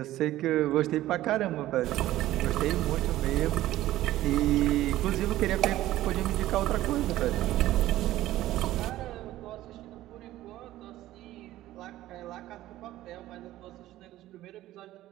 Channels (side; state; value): left; quieter; 15.0 dB